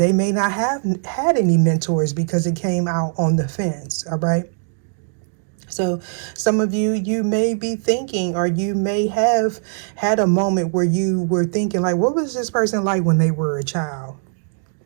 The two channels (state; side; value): silent; left; digital silence